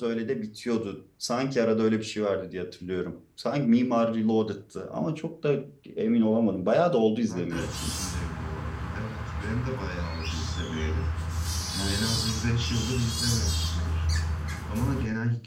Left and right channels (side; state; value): both; identical; correlation 1.00